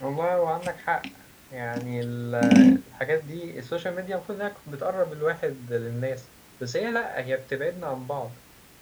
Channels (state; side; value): identical; both; correlation 1.00